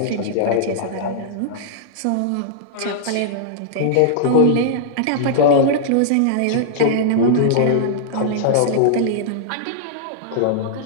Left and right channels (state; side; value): different; both; correlation -0.02